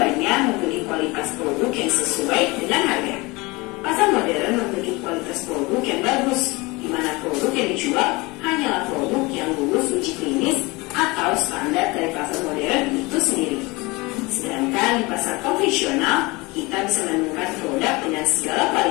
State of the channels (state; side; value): quieter; right; 24.1 dB